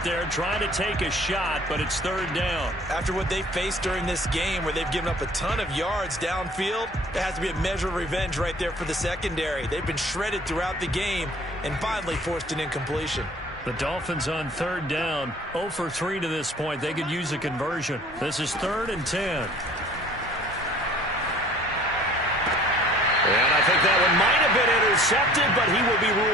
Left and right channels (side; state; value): both; normal; correlation 0.51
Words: there, trying to take a shot, but it's third down. After what they faced during this game, where they've given up a ton of yards downfield, there has to be a measure of revenge right there for the secondary. They've been shredded throughout the game and finally forced an incompletion. The Dolphins on third down, 0 for 3 to this point. They could use a conversion. This is 3rd and 10. And I think that one might have been intercepted, but he will be